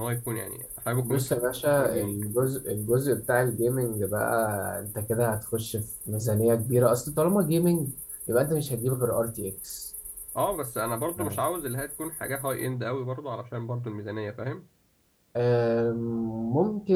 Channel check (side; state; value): both; identical; correlation 1.00